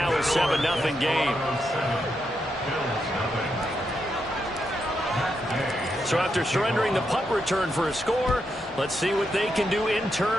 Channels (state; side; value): normal; both; correlation 0.83